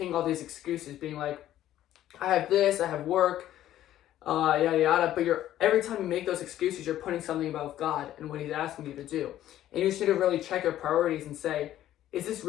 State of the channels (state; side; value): quieter; right; 12.8 dB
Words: all these excuses, being like, I have this, I have work, yada yada. But every time you make those excuses, you're putting something above God and what He's asking you to do. And you just need to really check your priorities and say, is